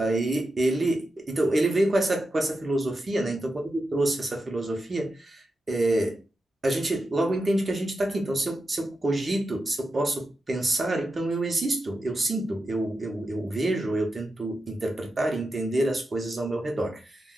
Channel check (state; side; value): normal; both; correlation 0.89